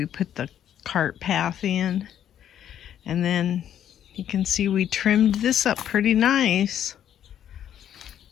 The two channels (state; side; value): quieter; right; 10.2 dB